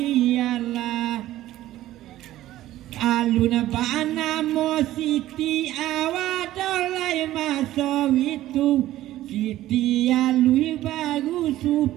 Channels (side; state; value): left; quieter; 14.6 dB